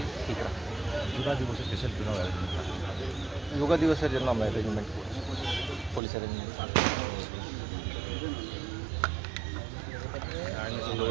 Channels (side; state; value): left; drops out; at 6.0 s